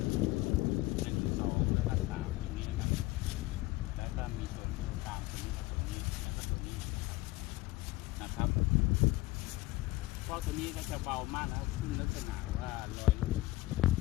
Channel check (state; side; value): quieter; right; 19.1 dB